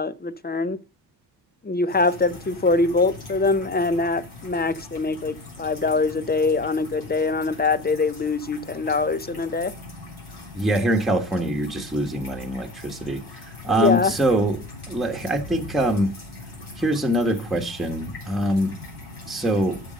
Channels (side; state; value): both; normal; correlation 0.38